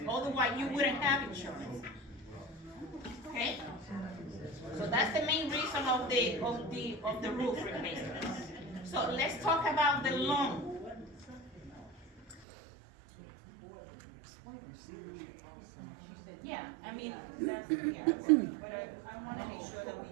Otherwise, you wouldn't have insurance. Okay? So that's the main reason of the roof replacement. So let's talk about the loan. Yeah, I mean, that's, yeah, but I wanna make sure that we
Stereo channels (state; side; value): drops out; left; at 12.5 s